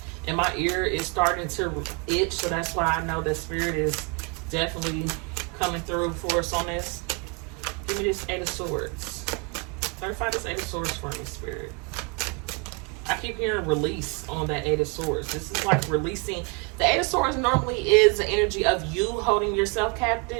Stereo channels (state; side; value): quieter; left; 32.4 dB